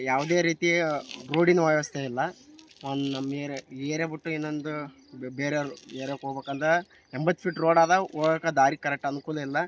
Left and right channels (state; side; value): identical; both; correlation 1.00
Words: ಯಾವುದೇ ರೀತಿ ರೋಡಿನ ವ್ಯವಸ್ಥೆ ಇಲ್ಲ. ಒಂದು ನಮ್ಮ ಏರಿಯಾ ಬಿಟ್ಟು ಇನ್ನೊಂದು ಬೇರೆ ಏರಿಯಾಕ್ಕೆ ಹೋಗ್ಬೇಕಂದ್ರೆ 80 ಫೀಟ್ ರೋಡ್ ಅದ. ಹೋಗೋಕೆ ದಾರಿ ಕರೆಕ್ಟ್ ಅನುಕೂಲ ಇಲ್ಲ.